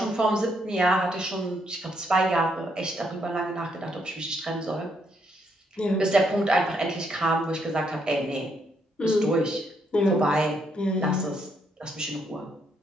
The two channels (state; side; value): normal; both; correlation 0.75